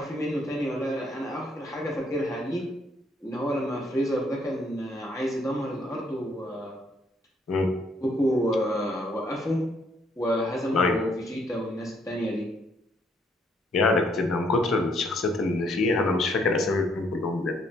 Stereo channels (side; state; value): both; normal; correlation 0.69